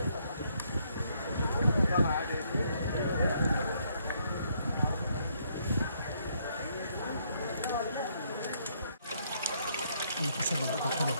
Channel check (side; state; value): both; inverted; correlation -0.71